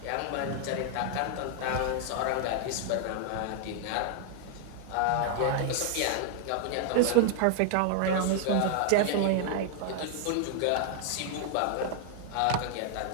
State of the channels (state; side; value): different; both; correlation 0.00